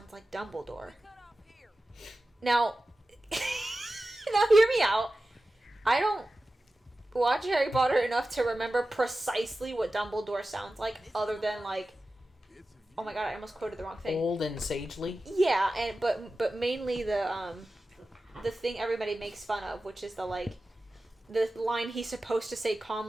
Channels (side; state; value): both; normal; correlation 0.94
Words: like Dumbledore. Now, now hear me out. I don't watch Harry Potter enough to remember precisely what Dumbledore sounds like, other than like oh my god, I almost quoted the wrong thing. Old and sagely. Yeah, and but mainly the thing everybody makes fun of, which is the line he's supposed to say